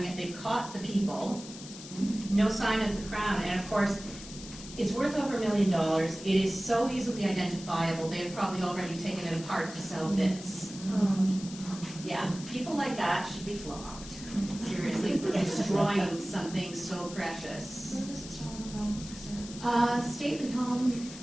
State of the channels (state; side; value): noise; left; hiss, 14 dB below the sound